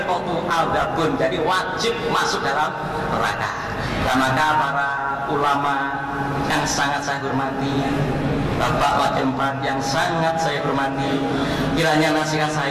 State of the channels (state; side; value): identical; both; correlation 1.00